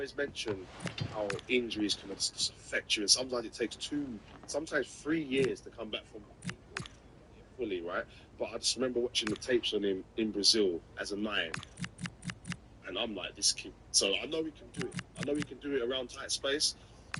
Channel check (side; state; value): both; identical; correlation 1.00